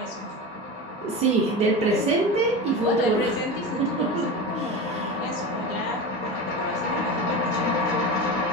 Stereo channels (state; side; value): normal; both; correlation 0.26